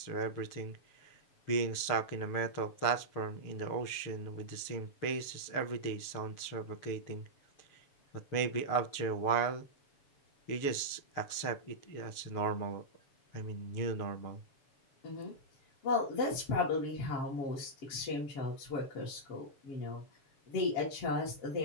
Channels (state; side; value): late; right; 7.1 ms